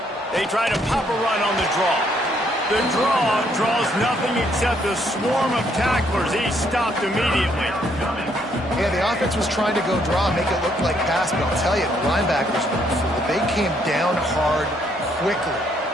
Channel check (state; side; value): normal; both; correlation 0.70